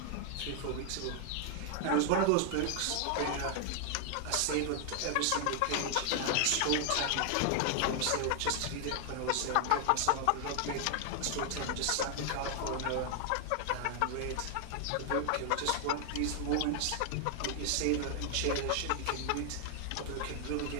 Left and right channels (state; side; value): different; both; correlation 0.00